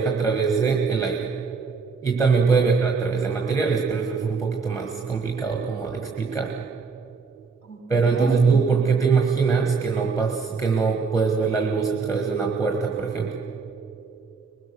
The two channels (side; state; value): left; quieter; 4.8 dB